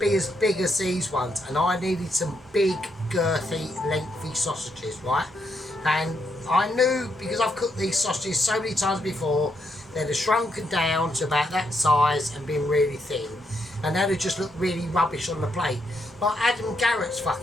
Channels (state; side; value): normal; both; correlation 0.78